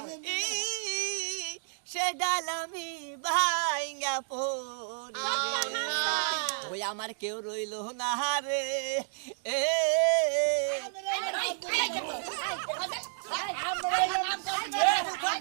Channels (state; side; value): silent; left; digital silence